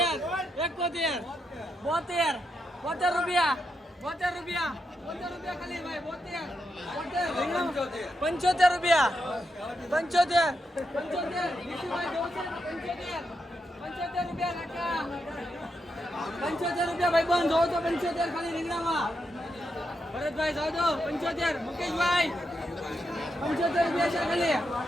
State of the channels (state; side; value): normal; both; correlation 0.84